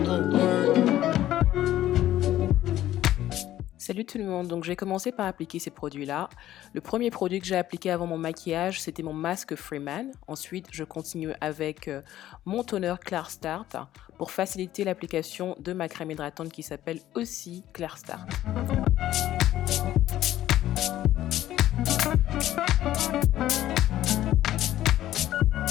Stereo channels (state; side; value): quieter; right; 13.3 dB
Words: tout le monde, donc je vais commencer par appliquer ces produits-là. Le premier produit que j'ai appliqué avant mon maquillage, c'était mon masque Freeman. Ensuite, je continue avec mon toner Clear Start pour faciliter l'application de ma crème hydratante qui s'appelle aussi Clear Start.